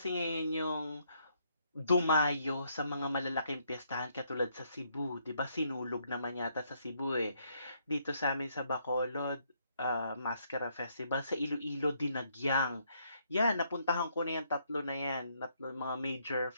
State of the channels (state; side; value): inverted; both; correlation -0.72